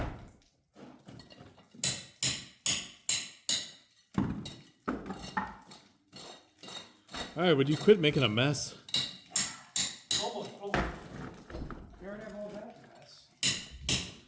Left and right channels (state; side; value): identical; both; correlation 1.00